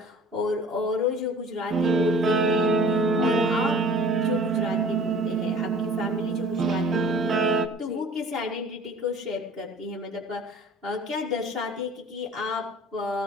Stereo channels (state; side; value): normal; both; correlation 0.47